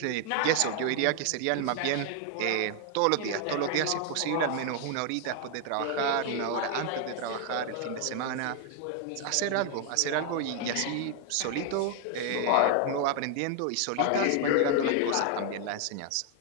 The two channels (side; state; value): both; different; correlation 0.00